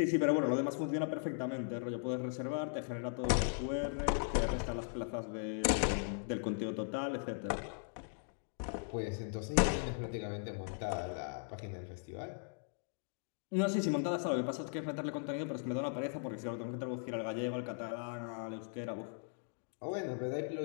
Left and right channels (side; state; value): right; silent; digital silence